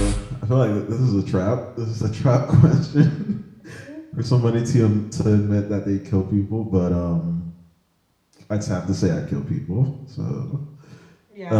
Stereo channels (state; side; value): identical; both; correlation 1.00